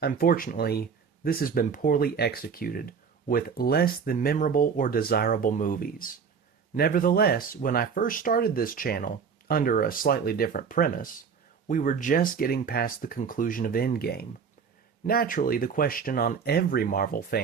Unfortunately, this has been poorly executed, with less than memorable or desirable movies. Nevertheless, when I first started this channel, under a slightly different premise, we were just getting past the conclusion of Endgame. Naturally, the question on every Marvel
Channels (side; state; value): left; quieter; 6.2 dB